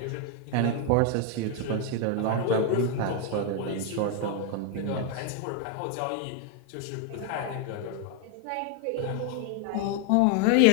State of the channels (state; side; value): different; both; correlation 0.01